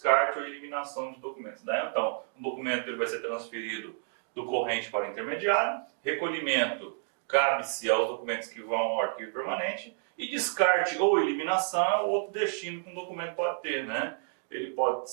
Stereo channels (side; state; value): left; silent; digital silence